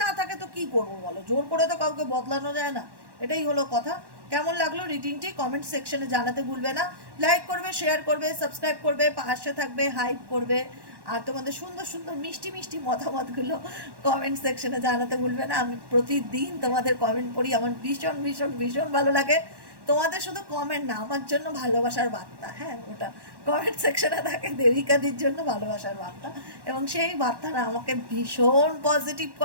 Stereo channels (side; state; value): left; late; 1.1 ms